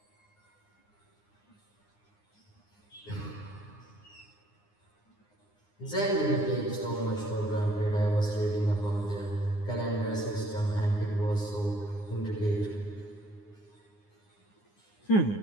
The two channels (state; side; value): late; right; 9.7 ms